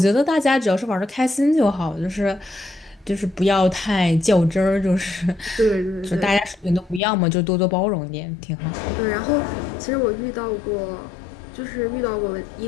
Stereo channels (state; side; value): drops out; right; at 7.0 s